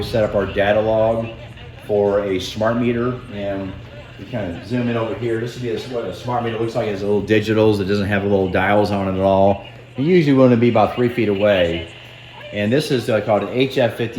set up our data log for a smart meter. And we kind of zoom in over here. This would be what a smart meter looks like. It has little digitals. It doesn't have little dials on it at all. You usually want to be about 3 feet away. And this is called an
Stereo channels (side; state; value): both; identical; correlation 1.00